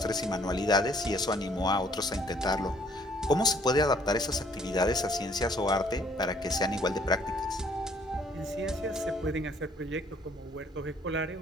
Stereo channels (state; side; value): normal; both; correlation 0.61